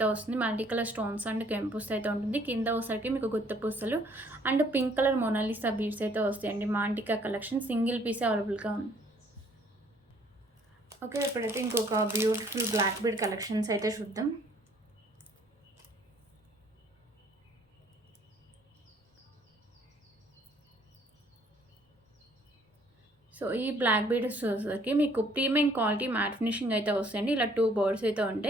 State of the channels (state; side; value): normal; both; correlation 0.61